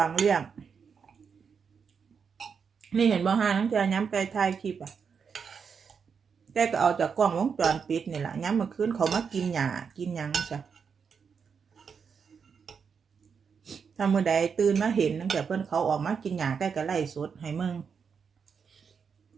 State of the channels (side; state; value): left; quieter; 6.3 dB